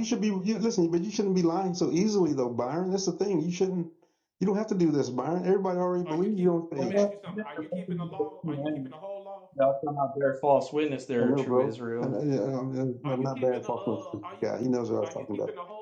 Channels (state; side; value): identical; both; correlation 1.00